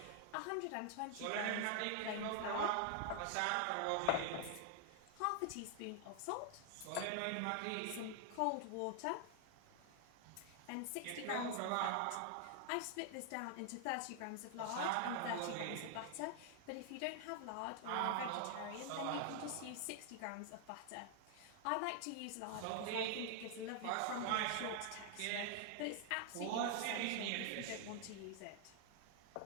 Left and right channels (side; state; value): both; different; correlation 0.00